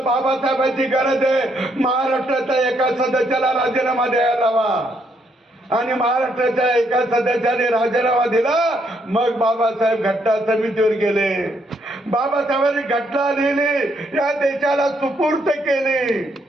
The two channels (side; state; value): both; normal; correlation 0.74